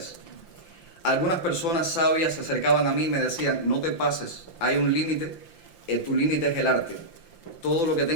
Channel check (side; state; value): right; late; 5.8 ms